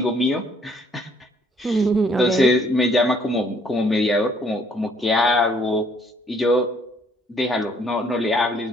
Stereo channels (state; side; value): normal; both; correlation 0.64